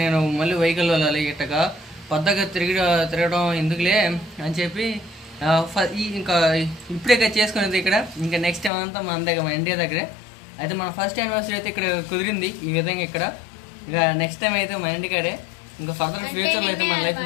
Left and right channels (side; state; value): right; drops out; at 8.7 s